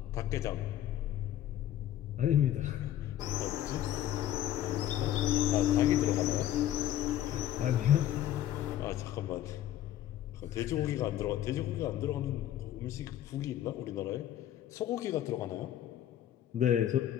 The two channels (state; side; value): quieter; right; 12.1 dB